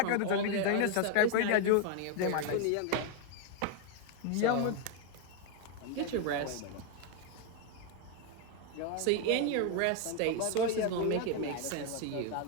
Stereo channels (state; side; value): different; both; correlation 0.01